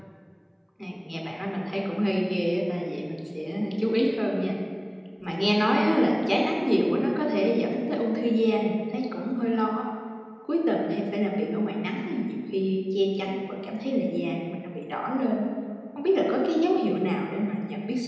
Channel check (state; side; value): identical; both; correlation 1.00